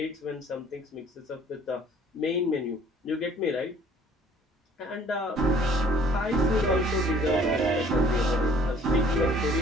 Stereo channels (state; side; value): normal; both; correlation 0.56